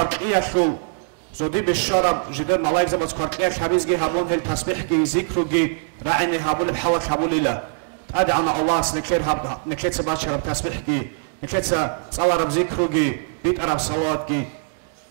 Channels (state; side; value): silent; left; digital silence